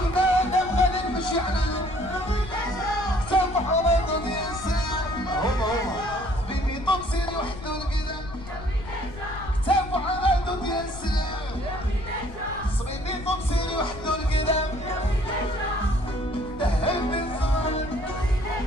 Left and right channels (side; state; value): left; noise; rumble, 14 dB below the sound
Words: نادم غادي نمشي عنده كتاب حرام الإنسان هما صبيبي طمسيني وحطوا القدام كتاب حرام الإنسان صبيبي طمسيني وحطوا القدام دهب بالصباح